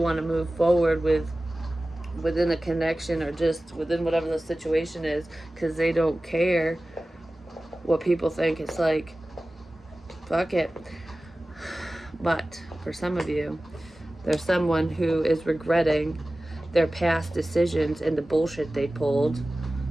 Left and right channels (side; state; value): both; normal; correlation 0.96